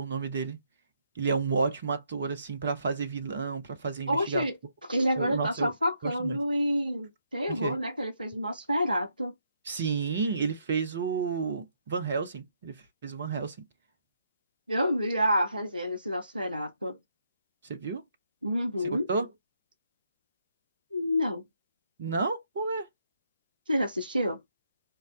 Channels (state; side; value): inverted; both; correlation -0.75